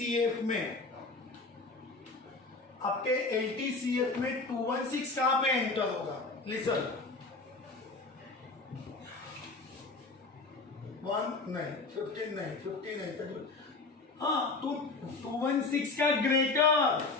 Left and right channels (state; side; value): quieter; right; 3.7 dB